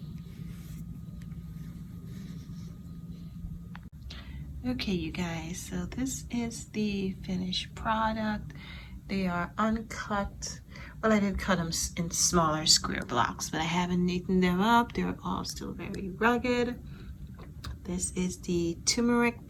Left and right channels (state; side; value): identical; both; correlation 1.00